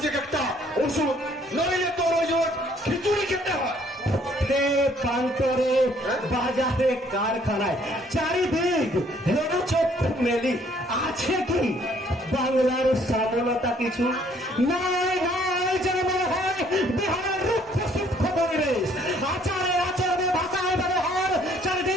একটা ওষুধ, নইলে তোর ওই খিচুড়ি খেতে হয়। প্রান্তরে বাজারে কারখানায় চারিদিক চক্ষু মেলি আছে কি বাংলার সফলতা কিছু? নাই নাই, যেন মনে হয় বিহারের রুক্ষ সূক্ষ্ম পরিবেশ। আচারে আচরণে ভাষায় ব্যবহার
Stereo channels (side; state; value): both; normal; correlation 0.62